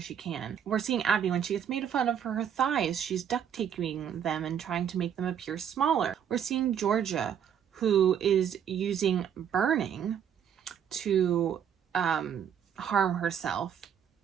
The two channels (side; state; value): left; quieter; 8.6 dB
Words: can. We're seeing Abby when she gets made fun of for her thighs. She's duct taping them and trying to make them appear smaller. We're seeing Georgia, who is using burning to harm herself,